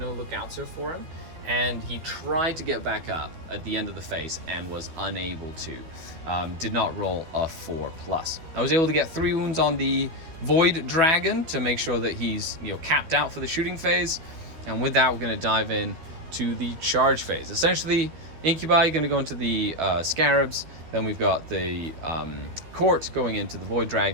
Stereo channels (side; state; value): left; late; 12 ms